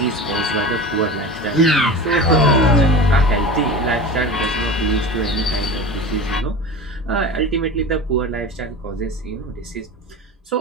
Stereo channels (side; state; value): both; normal; correlation 0.31